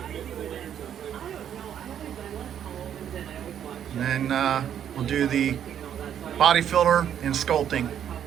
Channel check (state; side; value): quieter; left; 9.5 dB